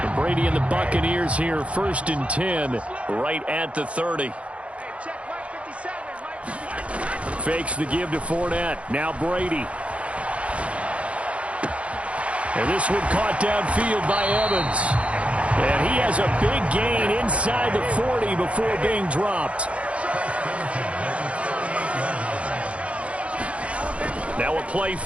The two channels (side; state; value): left; late; 0.062 ms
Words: Brady and the Buccaneers here, 1st and 10, right at the 30. Fakes the give to Fournette. Now Brady. And this one caught downfield by Evans. And he has a big gain inside the 40 before being dropped. Now a play